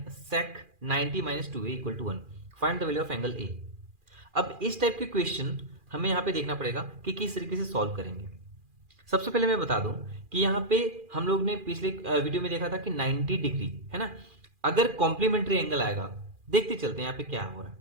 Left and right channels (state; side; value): late; left; 2.4 ms